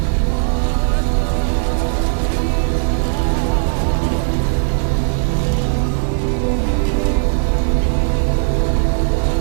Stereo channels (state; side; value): silent; left; digital silence